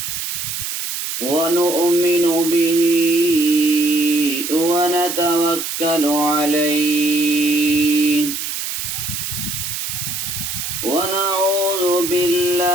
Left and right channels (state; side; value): noise; right; hiss, 4 dB below the sound